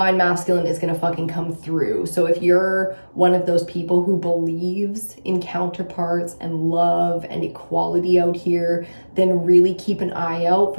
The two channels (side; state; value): both; inverted; correlation -1.00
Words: masculine is going to fucking come through. So if you're one of those people who believes in counterparts and love and equality out here, then really keep an eye out